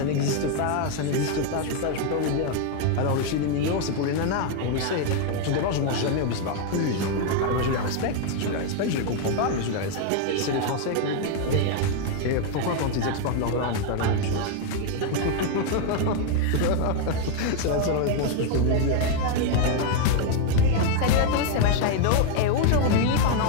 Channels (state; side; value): different; both; correlation 0.01